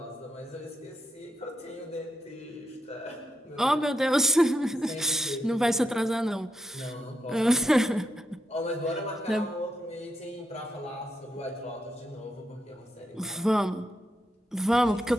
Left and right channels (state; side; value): normal; both; correlation 0.83